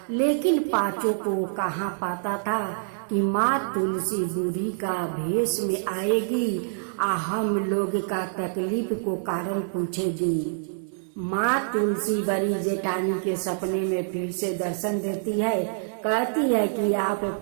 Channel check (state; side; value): silent; left; 61 dB below the other